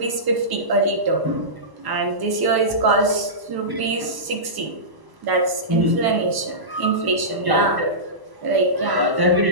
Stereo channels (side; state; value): left; late; 1.0 ms